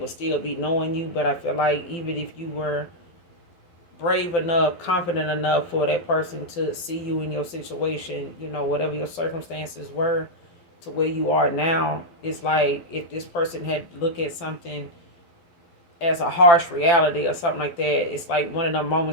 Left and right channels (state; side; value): late; right; 12 ms